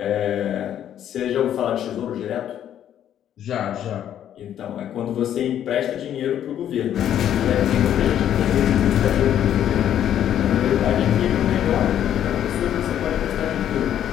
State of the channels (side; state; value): right; quieter; 10.5 dB